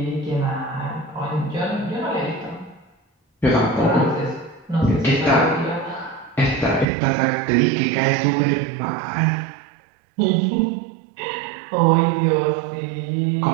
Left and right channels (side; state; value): left; drops out; at 6.9 s